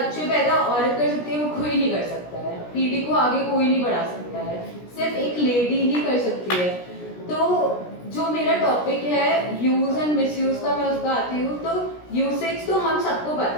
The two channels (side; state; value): right; late; 17 ms